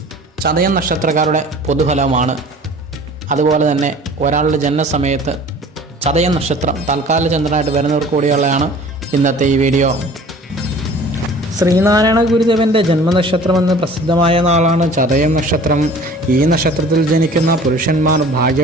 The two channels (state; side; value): normal; both; correlation 0.46